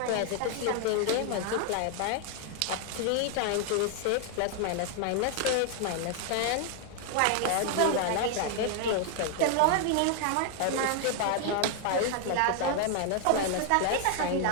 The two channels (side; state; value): both; different; correlation 0.00